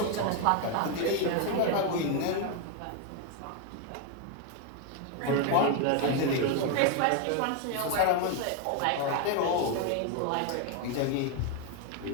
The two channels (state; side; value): different; both; correlation 0.01